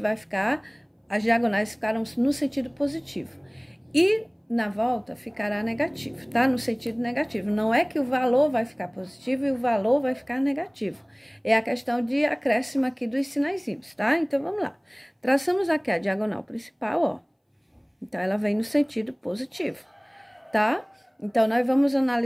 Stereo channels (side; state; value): both; identical; correlation 1.00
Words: vai ficar, as diagonais ficaram no sentido positivo. E na volta ficará negativo, tá? No sentido negativo. Não é que o valor vai ficar positivo e o valor vai ficar negativo. É a questão de acréscimo aqui dos sinaizinhos, tá? Então, vamos lá. Traçamos aqui a diagonal principal, ó. Então, ela vem no sentido positivo, tá? Então, nós vamos